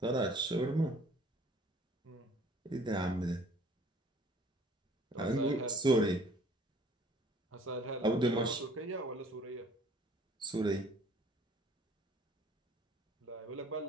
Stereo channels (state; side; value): normal; both; correlation 0.55